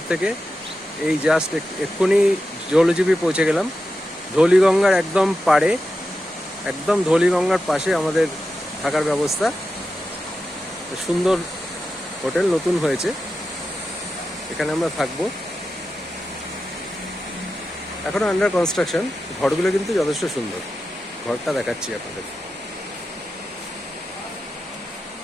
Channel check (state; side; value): normal; both; correlation 0.90